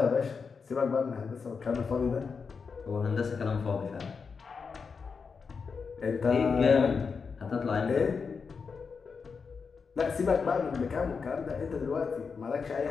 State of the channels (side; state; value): right; quieter; 5.4 dB